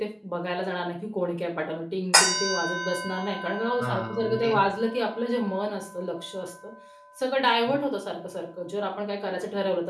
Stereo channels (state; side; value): identical; both; correlation 1.00